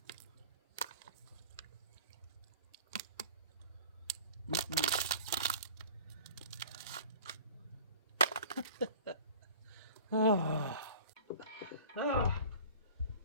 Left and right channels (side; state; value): both; inverted; correlation -0.43